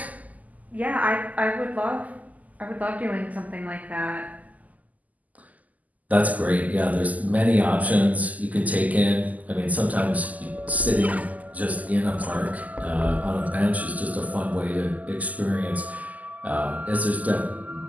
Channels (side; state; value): left; late; 0.077 ms